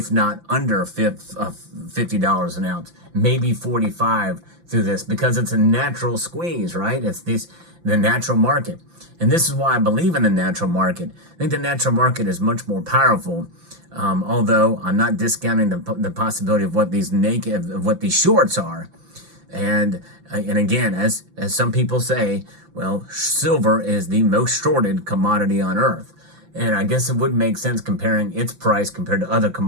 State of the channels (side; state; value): left; late; 5.9 ms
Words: not under $50 an ounce, maybe $45 through this, because it's a natural squeeze, right? It's the natural market. And this is why I believe in the natural market. I think the natural market is much more powerful. Although I'm not discounting the possibility of what these shorts are, and again, as some people say, well, silver is the most shorted commodity on earth, and I guess it would make sense comparing its price compared to other